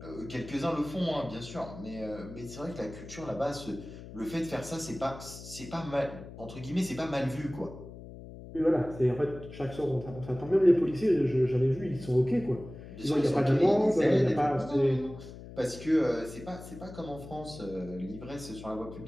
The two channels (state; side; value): noise; left; hum, 14 dB below the sound